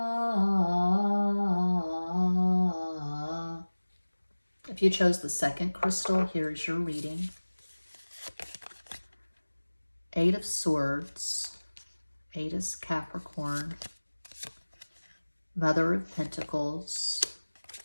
If you chose the second crystal, here's your reading. 8 of Swords. 8 is Capricorn. Mother of Pentacles.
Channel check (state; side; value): inverted; both; correlation -1.00